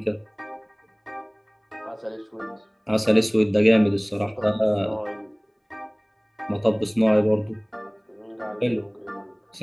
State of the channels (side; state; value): both; identical; correlation 1.00